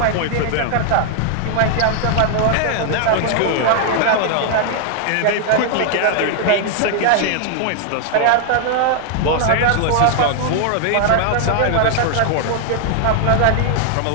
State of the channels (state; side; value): different; both; correlation 0.00